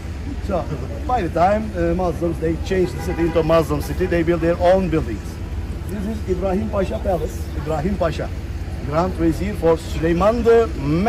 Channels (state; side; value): identical; both; correlation 1.00